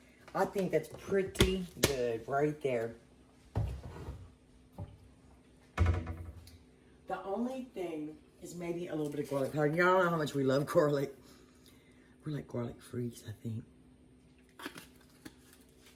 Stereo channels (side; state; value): both; identical; correlation 1.00